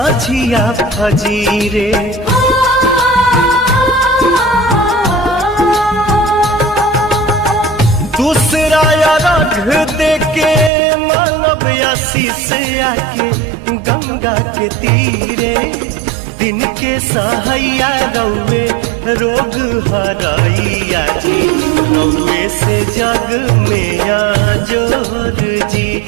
फजीरे दूसरा रघ देके मानव आशीष आके गंगा के तीरे दिन के सहैया रौवे रोग हरैया जी रौवे से जग में जोर जी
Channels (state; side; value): drops out; left; at 10.7 s